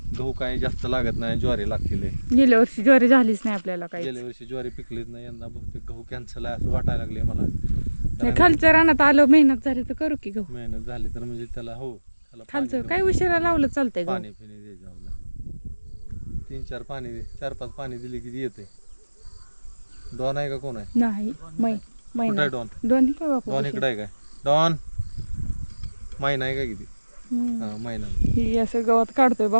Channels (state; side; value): inverted; both; correlation -1.00